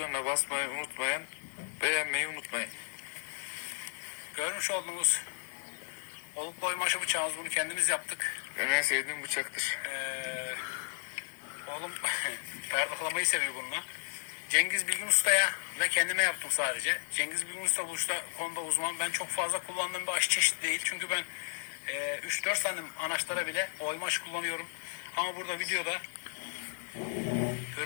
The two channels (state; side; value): silent; right; digital silence